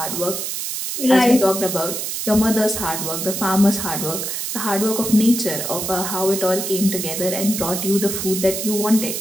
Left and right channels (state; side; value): noise; right; hiss, 4 dB below the sound